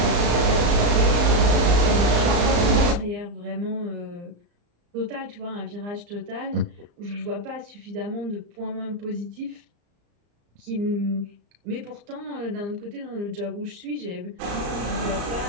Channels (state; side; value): late; left; 34 ms